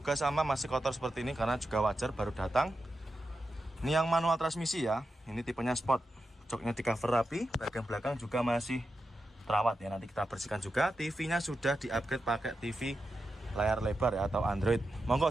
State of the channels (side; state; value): both; normal; correlation 0.89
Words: sama, masih kotor seperti ini karena juga wajar, baru datang. Ini yang manual transmisi ya, ini tipenya Sport. Joknya di cover rapi, bagian belakang juga masih terawat ya, nanti kita bersihkan juga. TV-nya sudah di-upgrade pakai TV layar lebar ya, atau Android.